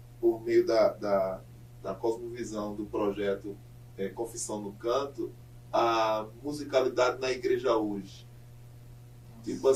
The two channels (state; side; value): identical; both; correlation 1.00